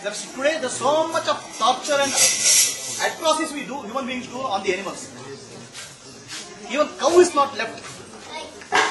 today there's so much of torture and atrocities we do, human beings do on the animals. Even cow is not left.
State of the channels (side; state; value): both; identical; correlation 1.00